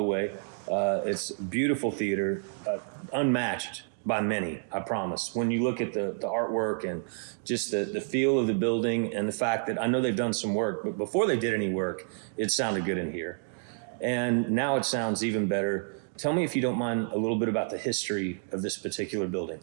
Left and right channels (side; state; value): left; silent; 58 dB below the other